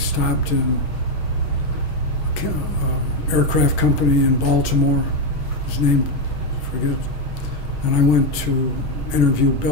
in an aircraft company in Baltimore. His name, I forget. And I went to interview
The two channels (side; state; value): right; late; 6.4 ms